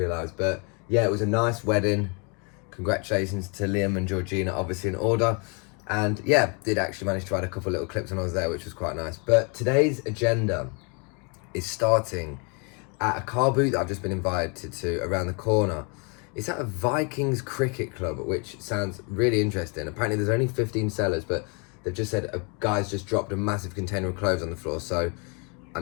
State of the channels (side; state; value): right; quieter; 34.2 dB